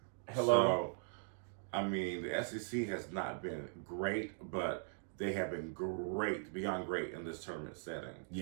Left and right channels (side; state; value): left; silent; digital silence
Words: Hello. So, I mean, the SEC has not been great, but they have been great, beyond great in this tournament setting.